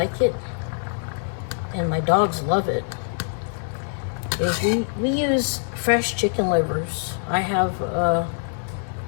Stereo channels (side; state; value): right; silent; digital silence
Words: it, and my dogs love it. Is we use fresh chicken livers. I have